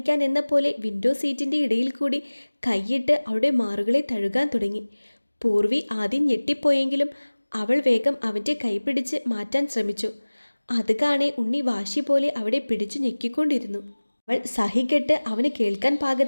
എന്ന പോലെ വിൻഡോ സീറ്റിൻ്റെ ഇടയിൽ കൂടി കൈയിട്ട് അവളുടെ മാറുകളെ തഴുകാൻ തുടങ്ങി. പൂർവി ആദ്യം ഞെട്ടിപ്പോയെങ്കിലും അവൾ വേഗം അവൻ്റെ കൈ പിടിച്ച് മാറ്റാൻ ശ്രമിച്ചു. അത് കാണെ ഉണ്ണി വാശി പോലെ അവിടെ പിടിച്ചു ഞെക്കിക്കൊണ്ടിരുന്നു. അവൾ സഹികെട്ട് അവന് കേൾക്കാൻ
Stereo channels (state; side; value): inverted; both; correlation -1.00